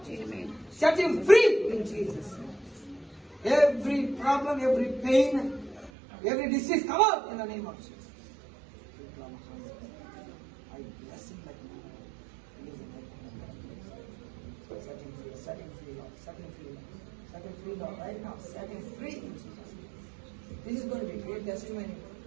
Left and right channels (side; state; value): left; drops out; at 5.9 s